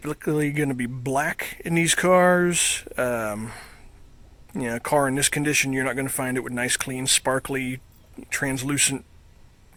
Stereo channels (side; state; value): both; identical; correlation 1.00